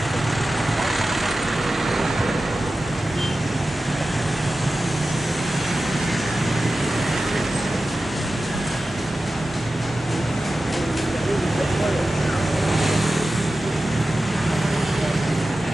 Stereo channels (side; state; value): both; normal; correlation 0.93